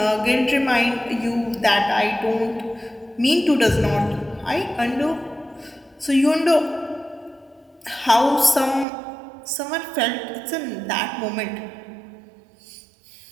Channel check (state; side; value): drops out; left; at 8.8 s